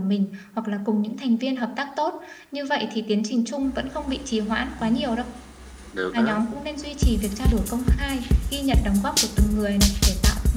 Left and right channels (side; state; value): both; identical; correlation 1.00